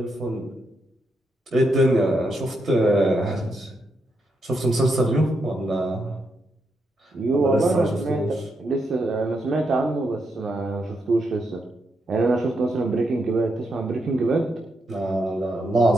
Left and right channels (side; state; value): both; normal; correlation 0.82